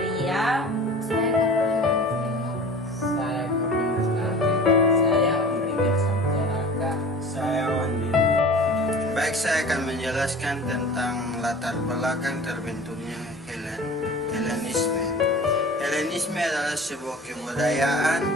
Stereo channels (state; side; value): normal; both; correlation 0.41